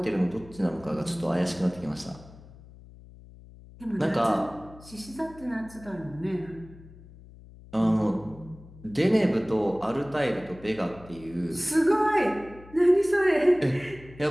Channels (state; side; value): noise; left; hum, 20 dB below the sound